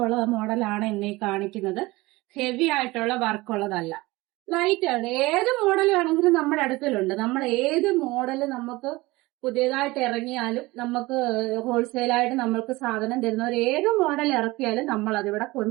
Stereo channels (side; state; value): left; quieter; 21.0 dB